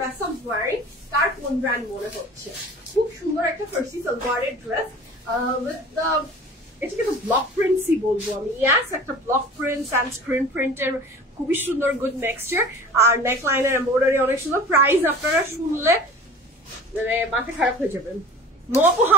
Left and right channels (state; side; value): normal; both; correlation 0.41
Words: I am wearing. কার কোন ব্র্যান্ড মনে হচ্ছে? খুব সুন্দর একটা ফার্সি সালোয়ারের ড্রেস উইথ দ্য, এটাকে তো ব্লক প্রিন্টসই বলবো আমি। ইয়াস, একটা ব্লক প্রিন্টস অ্যান্ড স্ক্রিন প্রিন্টের খুবই সুন্দর গুড নেক্সচার, আর নেক লাইনের এমব্রয়ডারি অনেক সুন্দর। প্রাইস আপনারা শুনলে মানে মাথা খারাপ হয়ে যাবেন। মপু